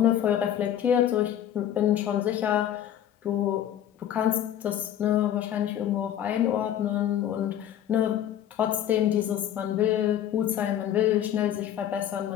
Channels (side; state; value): right; quieter; 10.7 dB